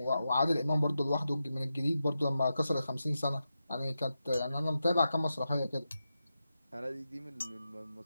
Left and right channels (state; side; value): inverted; both; correlation -0.89